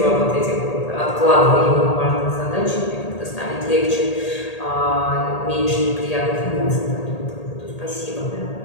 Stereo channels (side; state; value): right; late; 1.8 ms